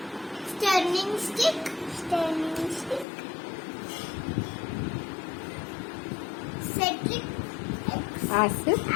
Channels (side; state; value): right; drops out; at 3.1 s